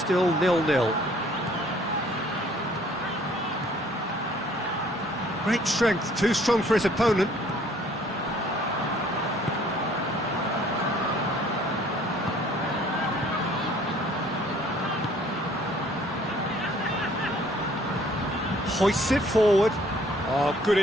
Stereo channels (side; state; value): both; normal; correlation 0.58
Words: 0-0. Great strength, too strong for his opponent. Hoists it forward. Oh, good